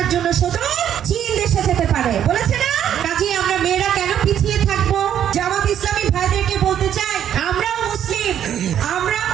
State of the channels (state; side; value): quieter; left; 9.9 dB